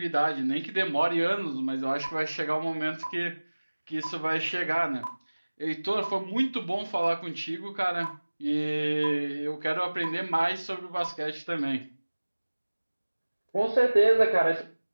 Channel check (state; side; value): inverted; both; correlation -1.00